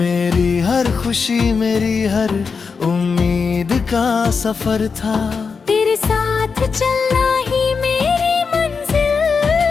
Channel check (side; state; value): right; quieter; 5.3 dB